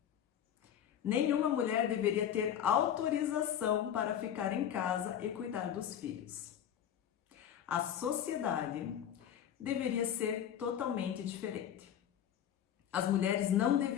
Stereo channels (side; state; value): right; quieter; 9.7 dB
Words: Nenhuma mulher deveria ter autorização para ficar em casa e cuidar dos filhos. A sociedade deveria ser totalmente diferente. As mulheres não